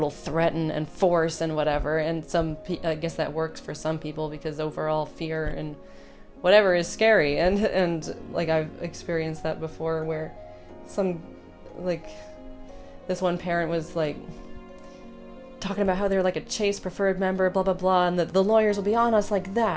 threaten and force and whatever, and I guess that works for some people because overall fear and whatever is scary, and like I've experienced that before where some like this one parent was like talking about how they're like a Chase preferred member, blah blah blah, and the lawyers will be on us like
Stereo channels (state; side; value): identical; both; correlation 1.00